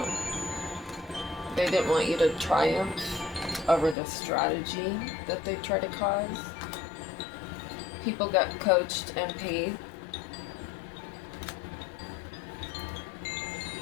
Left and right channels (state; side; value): drops out; right; at 4.0 s